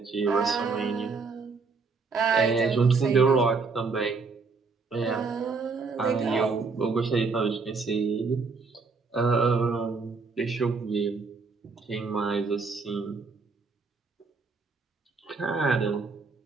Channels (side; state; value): left; quieter; 4.5 dB